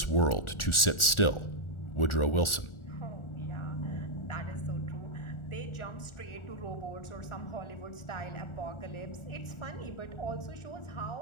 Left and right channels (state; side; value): late; right; 1.4 ms